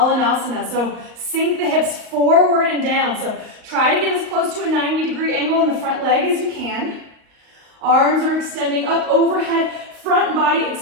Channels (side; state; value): left; late; 38 ms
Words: so sink the hips forward and down. So try to get as close to a 90-degree angle in the front leg as you can. Arms are extending up overhead, front body